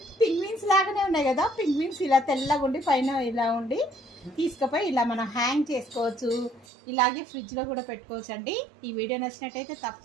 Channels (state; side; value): drops out; left; at 6.7 s